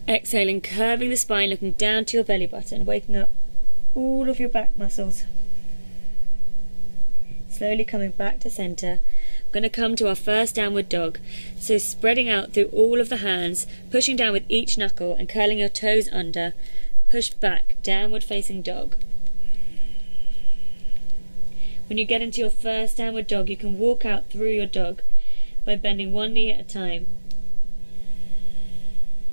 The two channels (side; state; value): both; inverted; correlation -1.00